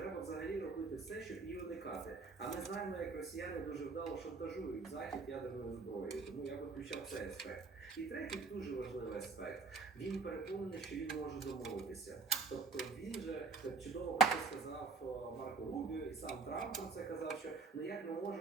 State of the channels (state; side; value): quieter; left; 4.5 dB